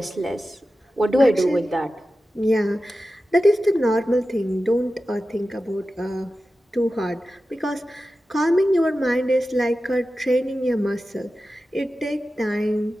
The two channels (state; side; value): normal; both; correlation 0.93